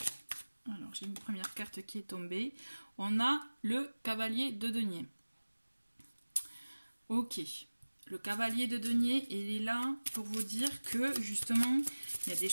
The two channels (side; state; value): both; inverted; correlation -1.00